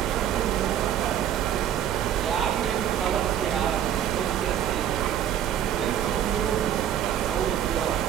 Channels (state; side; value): quieter; left; 10.3 dB